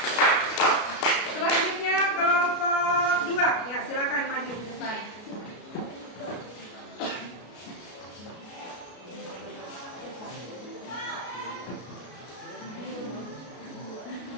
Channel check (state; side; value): late; right; 33 ms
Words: Selanjutnya kelompok 2. Ya, silakan maju di depan.